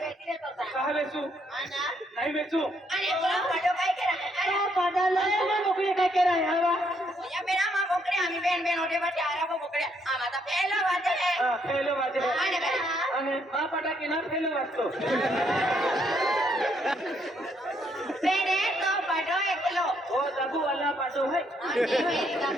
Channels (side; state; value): both; normal; correlation 0.72